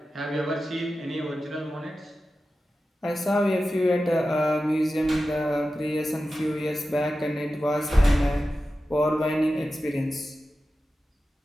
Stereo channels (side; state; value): both; normal; correlation 0.93